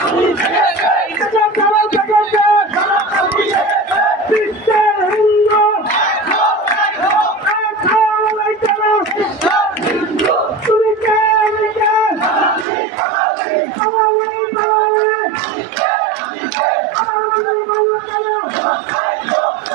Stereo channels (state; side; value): drops out; left; at 12.7 s